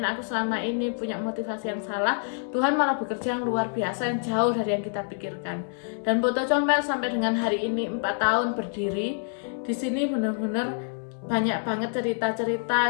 aku selama ini punya motivasi yang salah. Tuhan malah bekerja yang luar biasa, yang jauh dari yang kita pikirkan. Dan Poto Comel sampai dengan hari ini 4 tahun berdiri di sini, benar-benar banyak banget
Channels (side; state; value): right; silent; 59 dB below the other